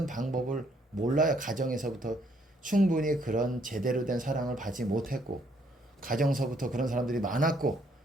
방법을 몰라요. 가정에서부터 충분히 그런 제대로 된 사랑을 받지 못했고 가정서부터 그런 사람들이 많았고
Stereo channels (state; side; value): normal; both; correlation 0.68